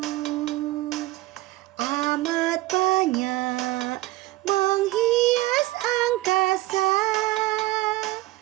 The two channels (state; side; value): quieter; left; 18.5 dB